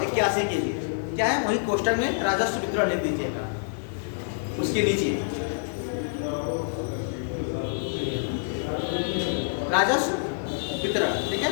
के लिए क्या है, वही कोष्टक में राजस्व वितरण लिख दीजिएगा, उसके नीचे राजस्व वितरण, ठीक है।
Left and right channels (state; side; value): silent; right; 60 dB below the other